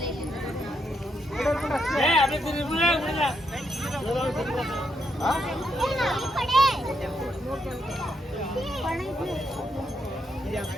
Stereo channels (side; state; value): both; normal; correlation 0.79